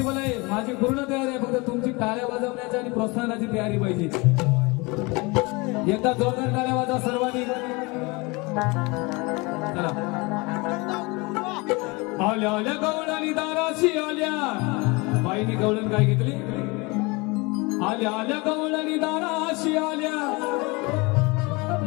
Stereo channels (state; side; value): quieter; right; 26.2 dB